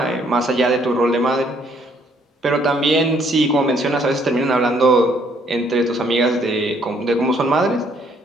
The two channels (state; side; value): normal; both; correlation 0.66